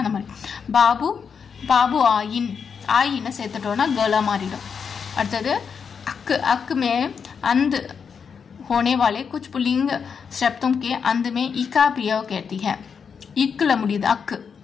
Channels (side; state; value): right; quieter; 6.4 dB